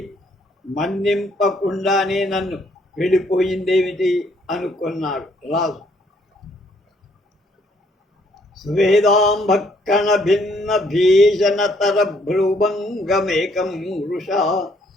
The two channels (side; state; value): both; normal; correlation 0.67